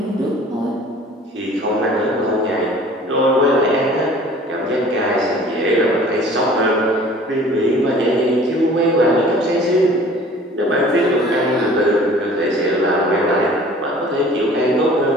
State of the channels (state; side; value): normal; both; correlation 0.48